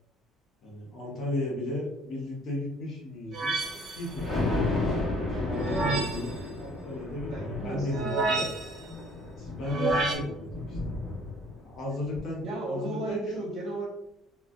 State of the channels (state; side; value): normal; both; correlation 0.56